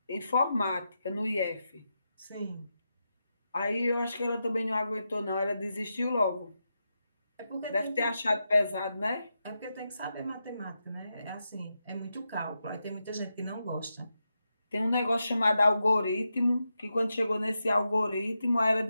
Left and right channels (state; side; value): inverted; both; correlation -0.87